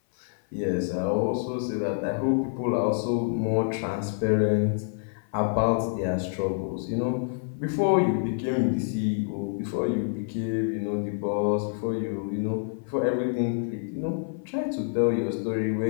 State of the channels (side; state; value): right; silent; 56 dB below the other